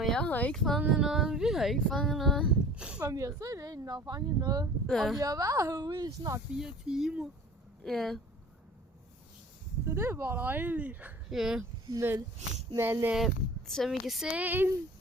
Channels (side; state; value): both; normal; correlation 0.45